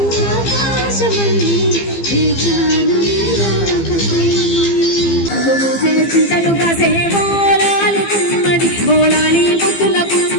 ఆకాశమల్లే చింతలు కాసే బోలాలి గుమ్మడి బోలాలి ముద్దుల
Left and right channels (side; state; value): right; late; 15 ms